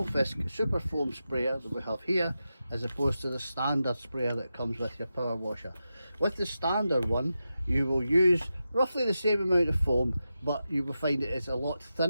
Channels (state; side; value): inverted; both; correlation -0.90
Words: super foam sprayer that we have here as opposed to the standard sprayer that comes with your power washer. With the standard one you will use roughly the same amount of foam, but you will find it is a lot